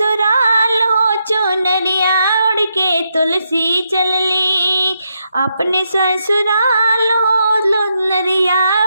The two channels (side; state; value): both; inverted; correlation -0.81